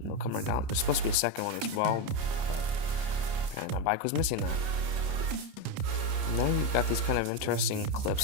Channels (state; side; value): late; left; 30 ms